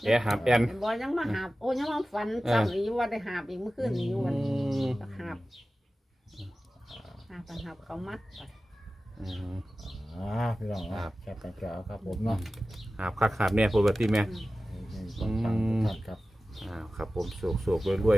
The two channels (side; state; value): both; normal; correlation 0.95